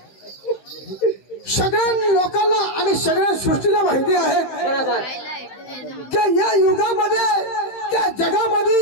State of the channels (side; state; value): right; late; 15 ms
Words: सगळ्या लोकांना आणि सगळ्या सृष्टीला माहिती आहे बरोबर की या युगामध्ये त्या